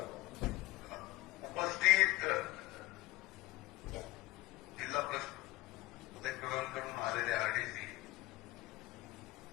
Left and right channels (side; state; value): right; quieter; 19.2 dB